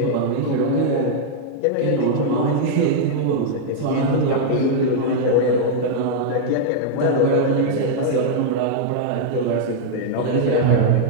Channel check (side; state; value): both; different; correlation -0.01